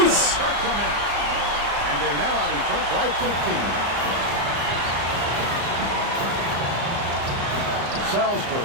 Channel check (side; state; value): left; late; 34 ms